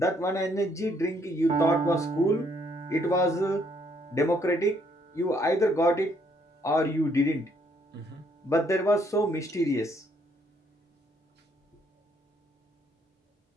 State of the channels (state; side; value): normal; both; correlation 0.69